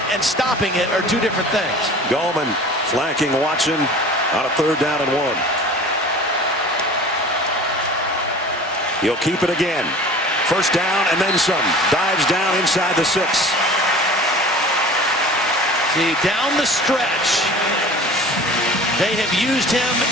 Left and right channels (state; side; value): normal; both; correlation 0.42